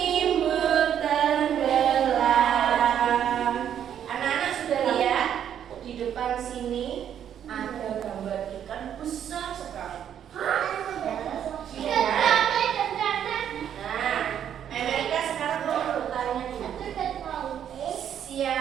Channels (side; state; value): left; quieter; 9.5 dB